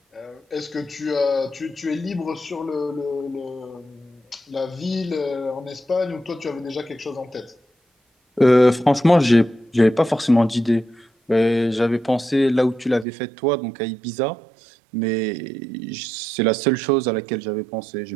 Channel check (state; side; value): drops out; left; at 13.1 s